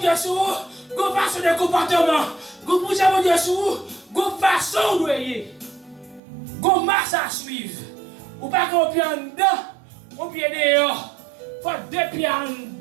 sur go façon de comportement. Pour jouer mon Dieu sur go façon de voyer, go marche à suivre. Ou pas qu'on pied en dedans, on pied dehors. Faut deux pieds en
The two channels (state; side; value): drops out; left; at 6.2 s